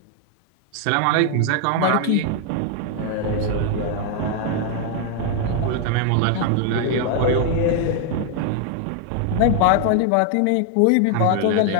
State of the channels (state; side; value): different; both; correlation 0.00